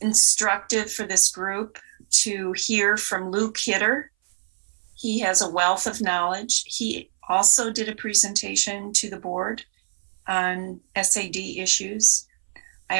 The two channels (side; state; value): left; silent; 61 dB below the other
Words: instructive for this group to hear from Lou Kidder. He has a wealth of knowledge. He also did a presentation to the board on SAD issues.